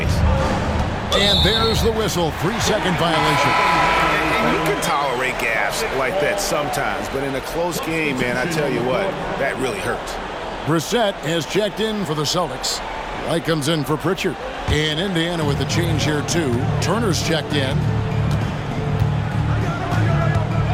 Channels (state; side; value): identical; both; correlation 1.00